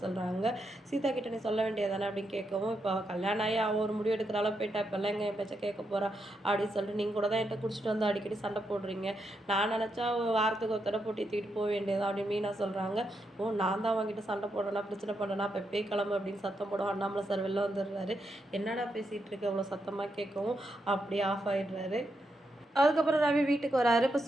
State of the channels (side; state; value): both; normal; correlation 0.82